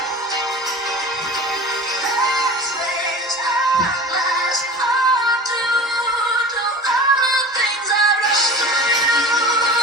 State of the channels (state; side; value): normal; both; correlation 0.37